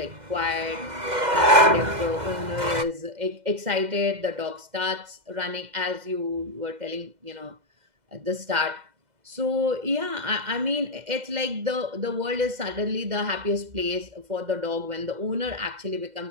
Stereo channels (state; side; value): late; left; 2.1 ms